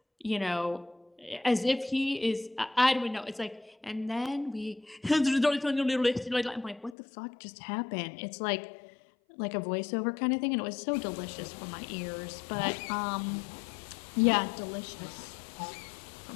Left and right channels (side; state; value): right; drops out; at 7.0 s